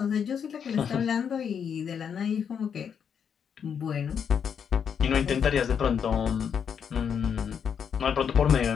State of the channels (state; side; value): quieter; right; 7.5 dB